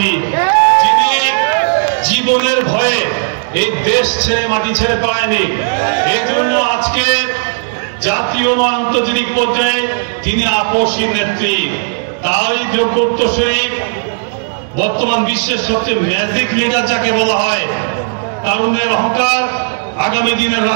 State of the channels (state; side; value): silent; left; digital silence